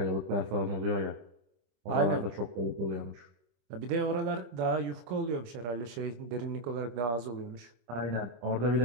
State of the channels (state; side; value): late; left; 25 ms